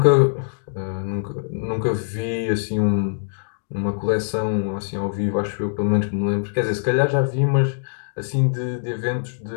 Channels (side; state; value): right; silent; digital silence